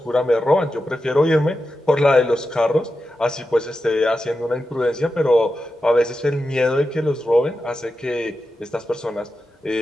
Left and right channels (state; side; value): normal; both; correlation 0.90